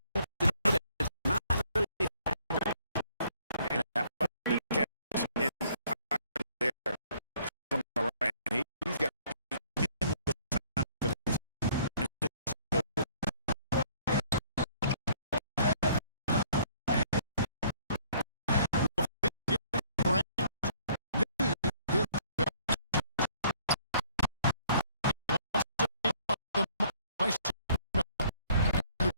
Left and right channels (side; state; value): both; inverted; correlation -0.61